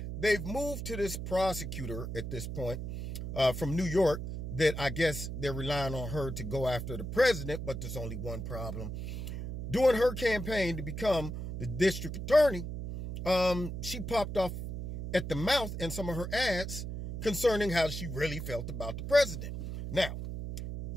they've moved to this prosecutor at this point from New York that I guess they're relying on her to go after the president. But there's only one problem. During her campaign to become the district attorney, she popped off at the mouth in some of her ads concerning how she really felt about the president. Now,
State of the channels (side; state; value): right; noise; hum, 6 dB below the sound